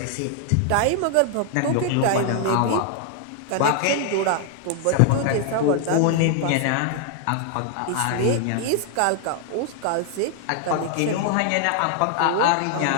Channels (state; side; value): different; both; correlation 0.00